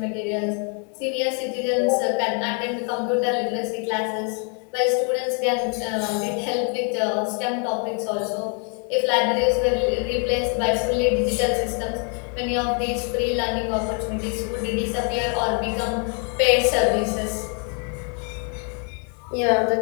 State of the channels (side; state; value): right; quieter; 39.4 dB